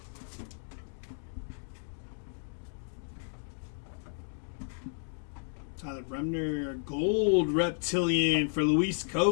Tyler Bremner, gold Reptilian for Luis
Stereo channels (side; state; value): right; silent; digital silence